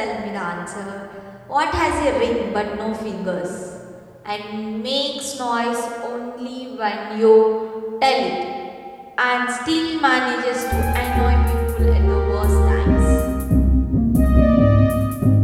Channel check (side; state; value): both; identical; correlation 1.00